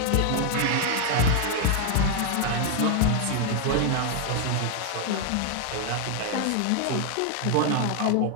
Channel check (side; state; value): both; different; correlation 0.00